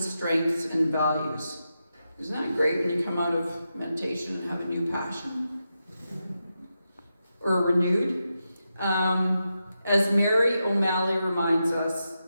strengths, and values. Isn't that great when you come out of meditation and have a new passion? Or renewed? As Mary O'Malley reminds us,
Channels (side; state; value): both; inverted; correlation -0.88